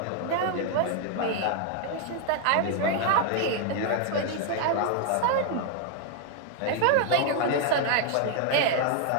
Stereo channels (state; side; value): different; both; correlation 0.00